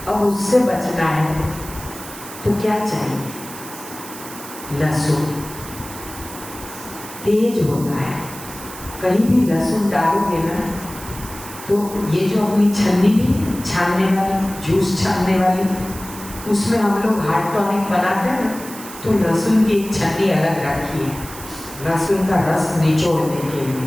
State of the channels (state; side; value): noise; right; hiss, 14 dB below the sound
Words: अब उससे बचना है तो क्या चाहिए? लहसुन तेज होता है, कहीं भी लहसुन डालोगे ना तो ये जो अपनी छन्नी भी छानने वाली, जूस छानने वाली, उसमें हम लोग हार्ट टॉनिक बनाते हैं ना, तो लहसुन की एक छन्नी अलग रखी है, लहसुन का रस निचोड़ने के